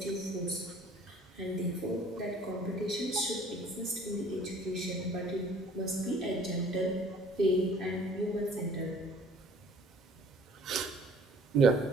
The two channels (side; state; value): both; normal; correlation 0.53